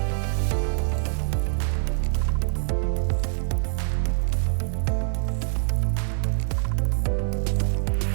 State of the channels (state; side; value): silent; left; 56 dB below the other